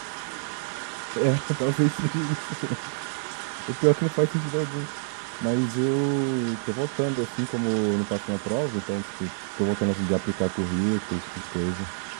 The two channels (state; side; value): silent; left; digital silence